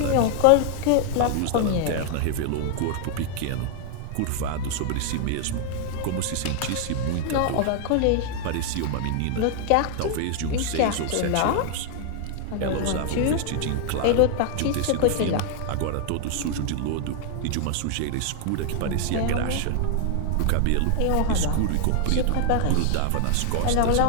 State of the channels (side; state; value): both; different; correlation 0.00